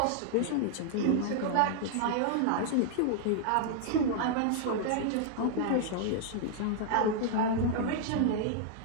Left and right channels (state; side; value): different; both; correlation -0.01